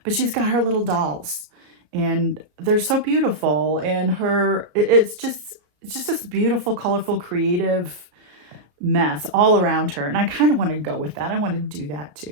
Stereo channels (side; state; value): left; late; 33 ms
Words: But she's got her little dolls and they're so beautiful. And it's just this beautiful, colorful, creative mess all around her. And I kind of want to go with that. I want to do that